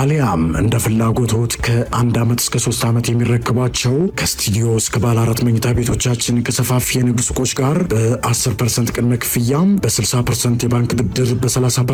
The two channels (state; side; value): identical; both; correlation 1.00